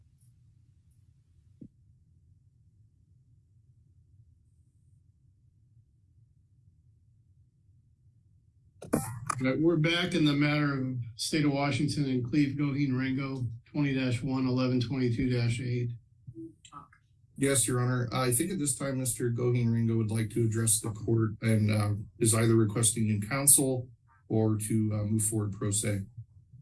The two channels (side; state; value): both; identical; correlation 1.00